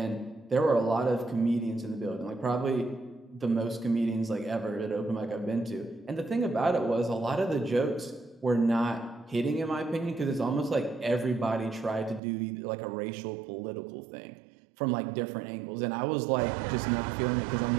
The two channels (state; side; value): drops out; left; at 12.2 s